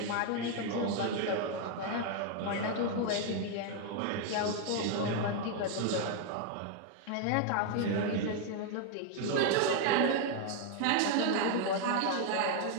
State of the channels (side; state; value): both; different; correlation 0.01